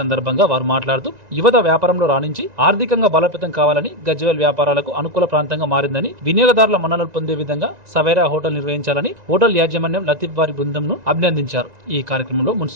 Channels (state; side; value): late; left; 1.9 ms